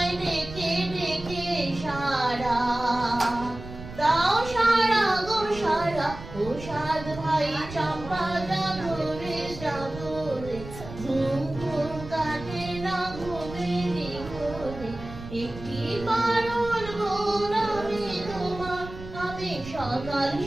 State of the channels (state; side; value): noise; right; rumble, 13 dB below the sound